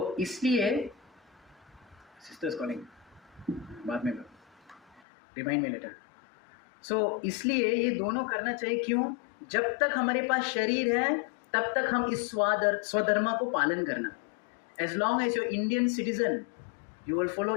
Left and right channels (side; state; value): right; drops out; at 5.0 s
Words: इसलिए सिस्टर्स कॉलिंग, बाद में रिमाइंड मी लेटर। सो इसलिए ये दोनों करना चाहिए। क्यों? जब तक हमारे पास शरीर है तब तक हम इस स्वधर्म को पालन करना। As long as your Indian citizen, you will follow